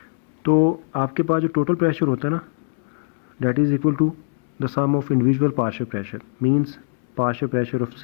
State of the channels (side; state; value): right; silent; digital silence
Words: तो आपके पास जो टोटल प्रेशर होता है ना, that is equal to the sum of individual partial pressure, means partial pressure of